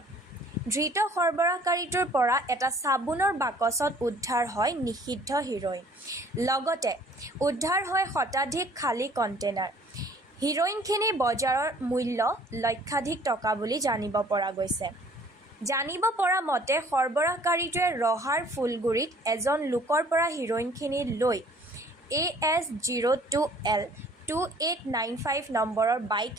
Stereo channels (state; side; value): normal; both; correlation 0.54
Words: ধৃত সৰবৰাহকাৰীটোৰ পৰা এটা চাবোনৰ বাকচত উদ্ধাৰ হয় নিষিদ্ধ হিৰোইন। লগতে উদ্ধাৰ হয় শতাধিক খালী কণ্টেইনাৰ। হিৰোইনখিনিৰ বজাৰৰ মূল্য লক্ষাধিক টকা বুলি জানিব পৰা গৈছে। জানিব পৰা মতে সৰবৰাহকাৰীটোৱে ৰহাৰ ফুলগুৰিত এজন লোকৰ পৰা হিৰোইনখিনি লৈ AS02L2895 নম্বৰৰ